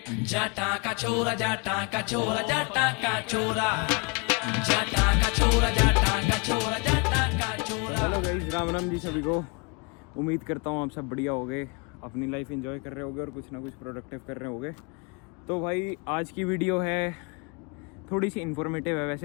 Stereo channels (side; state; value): right; quieter; 30.7 dB